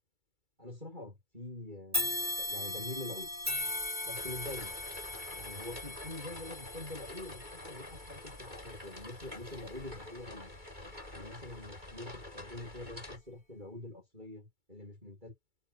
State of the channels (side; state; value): left; late; 2.3 ms